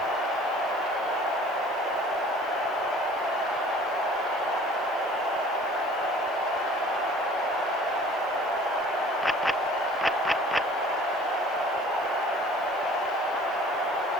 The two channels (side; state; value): both; normal; correlation 0.49